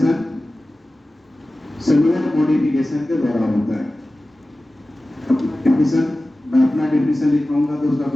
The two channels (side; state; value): both; normal; correlation 0.96